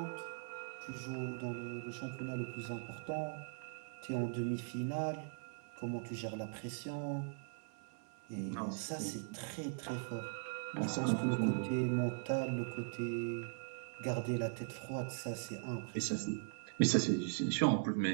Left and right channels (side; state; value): left; silent; digital silence